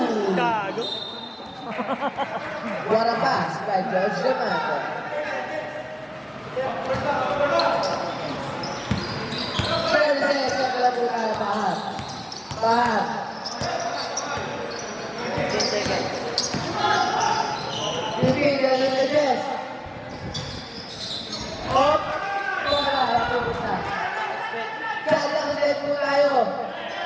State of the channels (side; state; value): both; identical; correlation 1.00